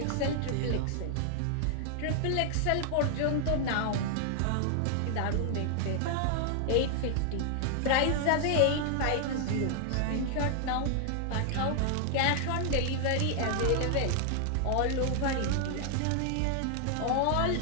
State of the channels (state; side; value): different; both; correlation 0.00